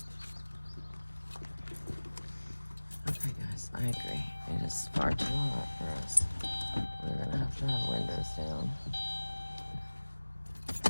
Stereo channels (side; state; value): both; inverted; correlation -1.00